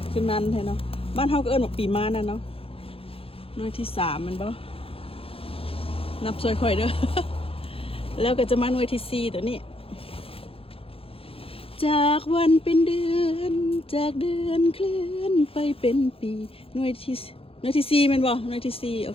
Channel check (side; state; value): right; late; 0.27 ms